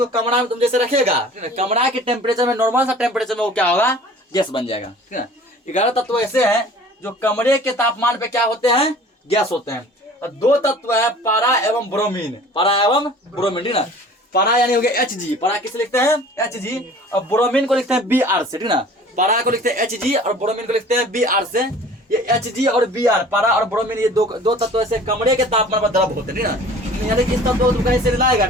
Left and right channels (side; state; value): both; normal; correlation 0.46